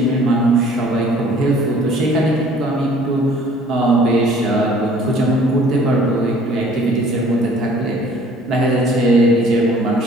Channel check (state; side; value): normal; both; correlation 0.54